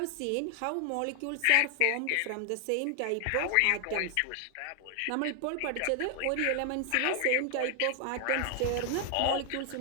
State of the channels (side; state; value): both; different; correlation 0.00